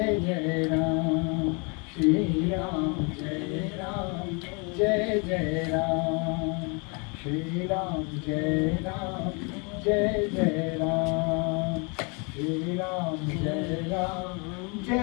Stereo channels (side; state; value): right; quieter; 33.0 dB